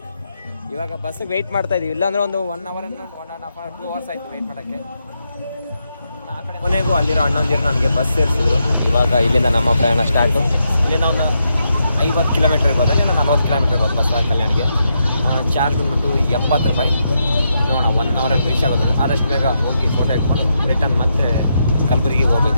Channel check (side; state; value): both; inverted; correlation -0.82